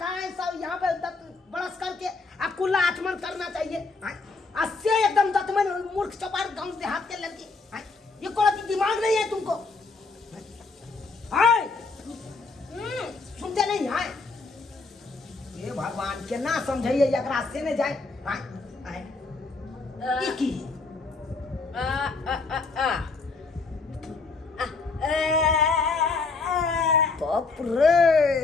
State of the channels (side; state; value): right; quieter; 4.0 dB